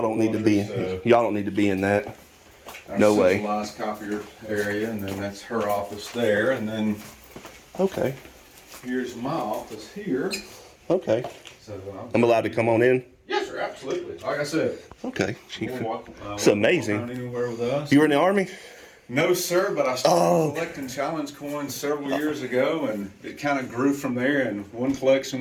don't need to be. Y'all don't need to be in that. No way. Centralized copier area, and then that's her office there, and then Okay. here's my office here. Okay. So I'm allowed to come on in. yes, sir, absolutely. Like I said, Okay. it's amazing. Anywhere with us. You were in the Army? No, sir, but I started collecting challenge coins several years ago, and it kind of grew from there, and one collection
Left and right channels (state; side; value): identical; both; correlation 1.00